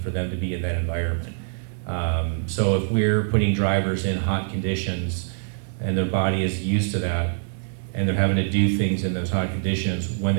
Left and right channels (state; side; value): silent; left; digital silence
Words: for them to be in that environment. So if we're putting drivers in hot conditions and their body is used to that, and they're having to do things in those hot conditions, when